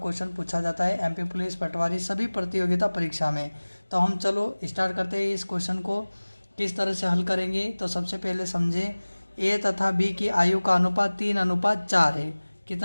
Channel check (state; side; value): inverted; both; correlation -1.00